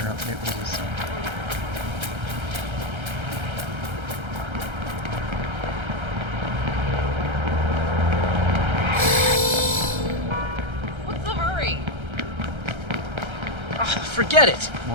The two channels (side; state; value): left; late; 1.3 ms